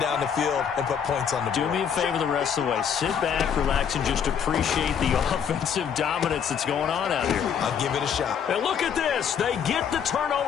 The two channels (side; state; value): right; quieter; 7.7 dB